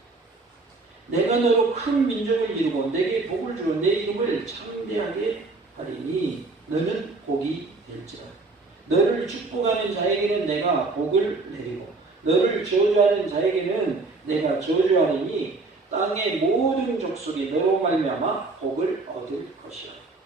내가 너로 큰 민족을 이루고 내게 복을 주러 내 이름을 창대하게 하리니 너는 복이 될지라. 너를 축복하는 자에게는 내가 복을 내리고 너를 저주하는 자에게는 내가 저주하리니 땅의 모든 족속이 너로 말미암아 복을 얻을 것이라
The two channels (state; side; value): quieter; left; 3.6 dB